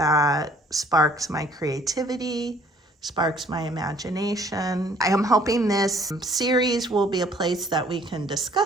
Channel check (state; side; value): normal; both; correlation 0.58